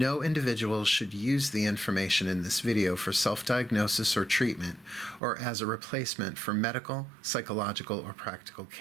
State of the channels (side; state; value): left; drops out; at 5.2 s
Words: individual should use the information in this video for self-diagnosis or treatment, or as a replacement for medical, psychological, or practical